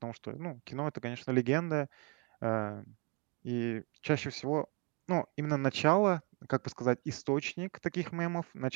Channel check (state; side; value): quieter; left; 32.4 dB